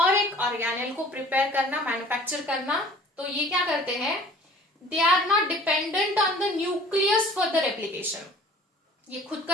एक ऑर्गेनेल को प्रिपेयर करना, मैन्युफैक्चर करना। तो ये क्या करते हैं, they are not dependent on the nucleus for the replication. ये खुद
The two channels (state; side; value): normal; both; correlation 0.48